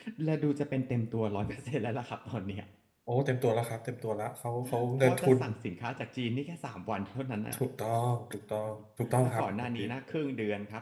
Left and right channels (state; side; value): identical; both; correlation 1.00